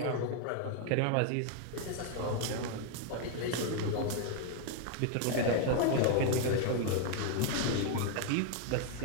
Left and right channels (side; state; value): both; different; correlation 0.00